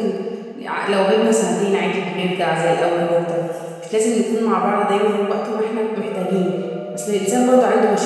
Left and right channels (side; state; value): both; identical; correlation 1.00